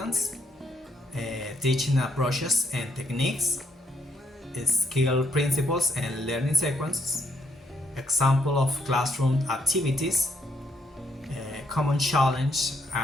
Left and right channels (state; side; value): normal; both; correlation 0.73